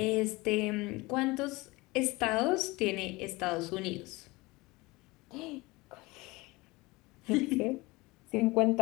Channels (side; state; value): right; quieter; 22.6 dB